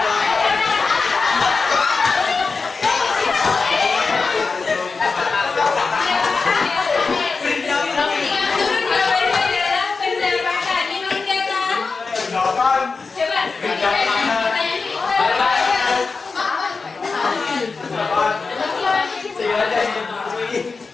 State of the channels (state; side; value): quieter; right; 4.4 dB